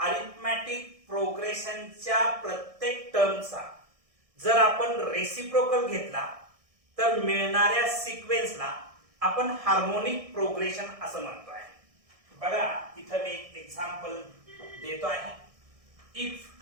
प्रोग्रेशनच्या प्रत्येक टर्मचा जर आपण रेसिप्रोकल घेतला तर मिळणाऱ्या सिक्वेन्सला आपण हार्मोनिक प्रोग्रेशन असं म्हणतो आहे. बघा, इथं मी एक एक्झाम्पल देतो आहे. If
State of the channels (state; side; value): late; left; 1.6 ms